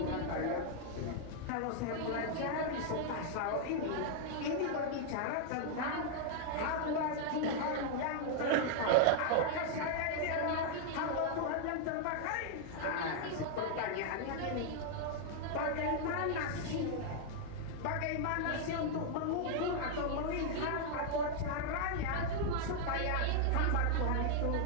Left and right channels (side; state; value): both; different; correlation -0.01